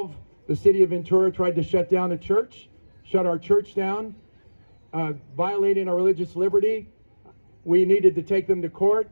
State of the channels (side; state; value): both; inverted; correlation -1.00